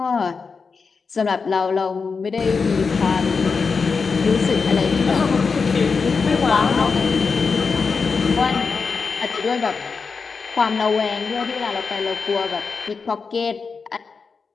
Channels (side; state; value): right; quieter; 5.0 dB